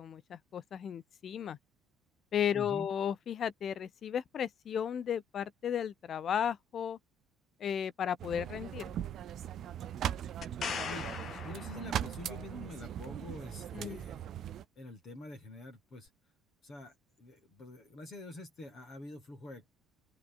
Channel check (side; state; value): right; quieter; 3.8 dB